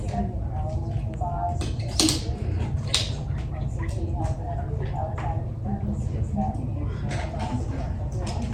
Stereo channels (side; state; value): both; identical; correlation 1.00